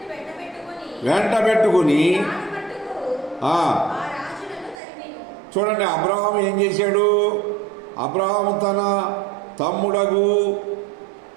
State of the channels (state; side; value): drops out; left; at 4.8 s